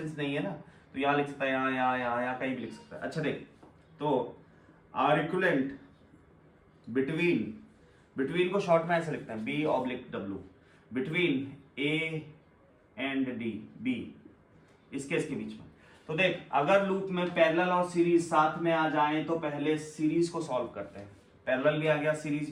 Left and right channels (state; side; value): identical; both; correlation 1.00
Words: नहीं है ना, तो यहाँ लिख सकता है, यहाँ कहीं भी लिख सकता है। अच्छा देख, तो आर इक्विवेलेंट बिटवीन को शॉर्ट में ऐसे लिखते हैं, B oblique W, between A and D, B इसके बीच में। तो देख अगर लूप में पैरेलल और सीरीज साथ में आ जाए तो पहले सीरीज को सॉल्व करते हैं। पैरेलल भी आ गया, सीरीज